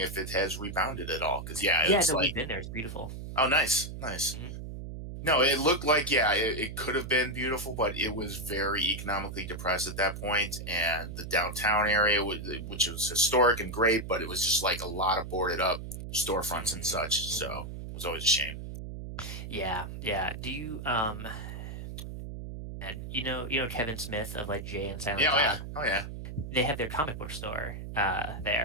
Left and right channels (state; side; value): noise; right; hum, 8 dB below the sound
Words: it has rebounded at all because yeah, Yeah, it's no, we've like been there. It's beautiful. oh nice, nice. Hmm. No, it looked like yeah, it could have been beautiful, but it was very economically depressed at that point, and the downtown area, which was historic and great, but it was just like a lot of boarded up storefronts and Hmm, such. So hmm. it was always a shame. Yeah, yeah. Do you and you know Kevin Smith of like Jay and Silent Yeah, oh yeah, Bob? oh yeah. They have their comic book store